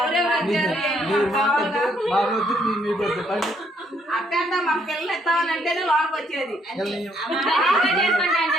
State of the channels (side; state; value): both; normal; correlation 0.70